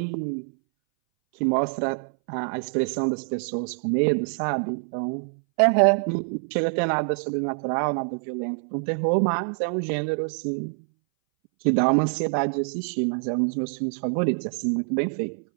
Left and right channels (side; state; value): left; silent; 60 dB below the other